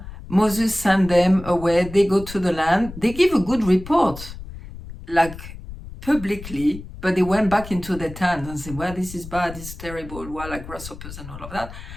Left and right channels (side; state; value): left; noise; rumble, 13 dB below the sound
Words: Moses sent them away, they go to the land, they give a good report, like publicly, but they went back into their tent and said, well, this is bad, this is terrible, well, like grasshoppers and all of that.